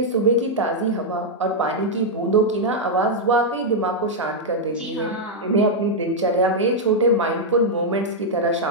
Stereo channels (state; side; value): normal; both; correlation -0.03